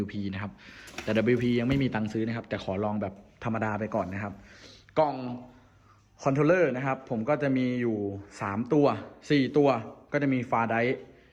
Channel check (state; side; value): identical; both; correlation 1.00